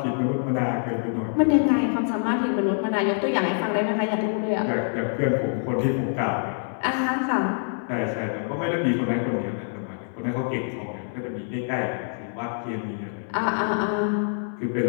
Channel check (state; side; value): silent; right; 61 dB below the other